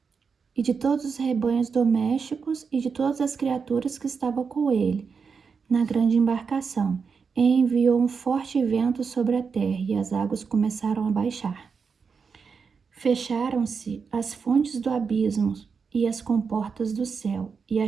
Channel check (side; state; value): left; quieter; 5.6 dB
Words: e de todos os rebanhos domésticos e de todas as criaturas que estavam com ele na grande embarcação. E enviou um forte vento sobre a terra e as águas começaram a baixar. Fecharam-se as fontes do abismo e as comportas do céu, e a